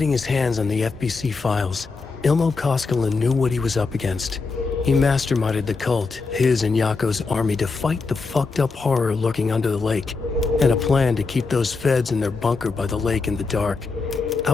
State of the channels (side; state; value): right; quieter; 4.2 dB